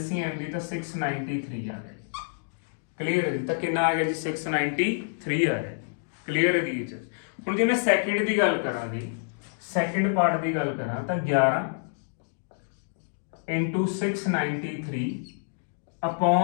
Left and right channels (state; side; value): silent; right; digital silence